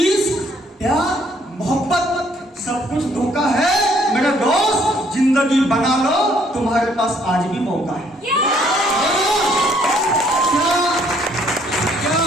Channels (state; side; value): normal; both; correlation 0.65